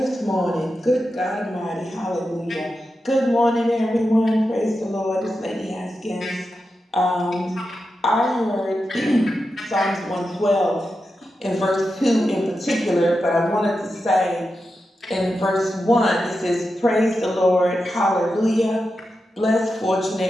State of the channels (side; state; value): both; normal; correlation 0.89